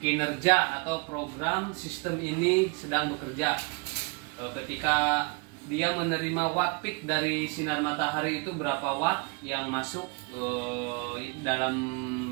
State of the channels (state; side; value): quieter; left; 31.0 dB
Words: kinerja atau program sistem ini sedang bekerja. Ketika dia menerima watt peak dari sinar matahari, itu berapa watt yang masuk dalam